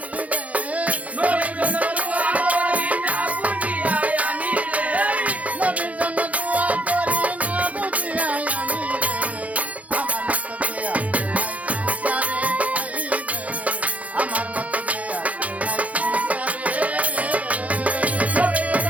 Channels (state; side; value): late; left; 0.068 ms